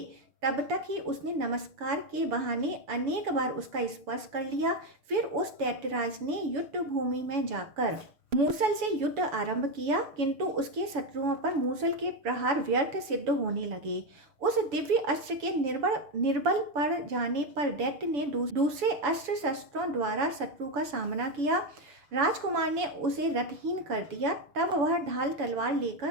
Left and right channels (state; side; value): late; left; 7.0 ms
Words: तब तक ही उसने नमस्कार के बहाने अनेक बार उसका स्पर्श कर लिया। फिर उस दैत्यराज ने युद्ध भूमि में जाकर मूसल से युद्ध आरंभ किया, किंतु उसके शत्रुओं पर मूसल के प्रहार व्यर्थ सिद्ध होने लगे। उस दिव्य अस्त्र के निर्बल पड़ जाने पर दैत्य ने दूसरे अस्त्र शस्त्रों द्वारा शत्रु का सामना किया। राजकुमार ने उसे रथहीन कर दिया। तब वह ढाल तलवार